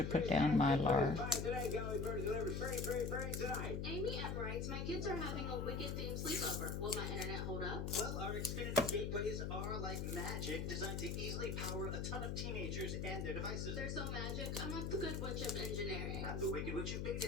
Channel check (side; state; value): left; noise; hum, 2 dB below the sound